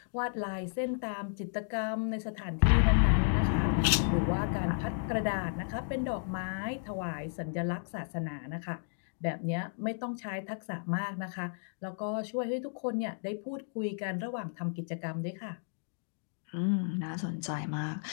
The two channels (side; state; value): right; silent; digital silence